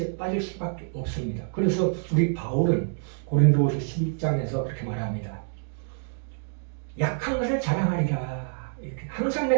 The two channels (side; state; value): left; silent; digital silence